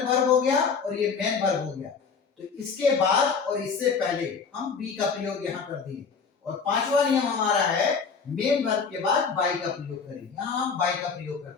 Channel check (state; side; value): quieter; right; 5.6 dB